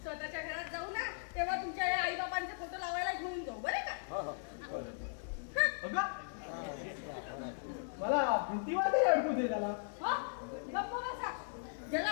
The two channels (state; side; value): silent; right; digital silence